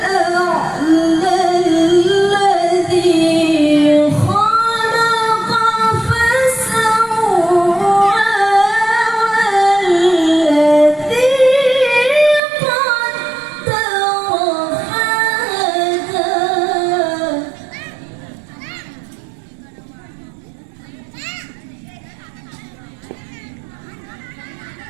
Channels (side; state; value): left; drops out; at 12.4 s